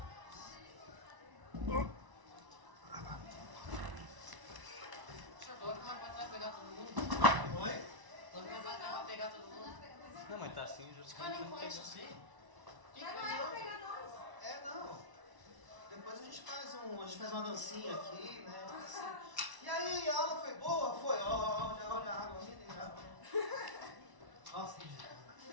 Chegou, como é que vai pegar todo mundo? Oi? Como é que vai pegar todo mundo? Não, mas tá assim, Os caras não conhecem você. Não. Depois a gente faz uma dancinha aqui, né? Assim. E aí, a aula foi boa? Foi. Olha a água mineral. Nossa, que dia.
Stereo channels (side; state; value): left; late; 1.0 ms